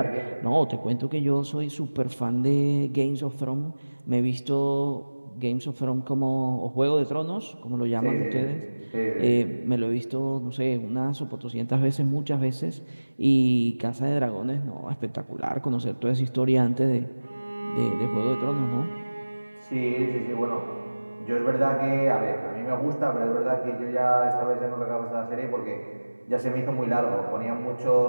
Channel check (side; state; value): both; inverted; correlation -1.00